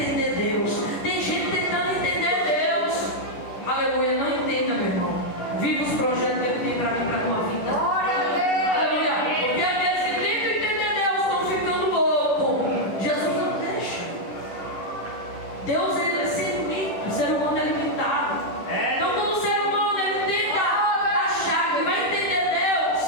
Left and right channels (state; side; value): late; right; 10 ms